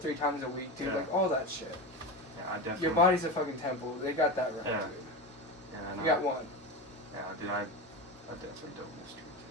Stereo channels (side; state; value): both; normal; correlation 0.22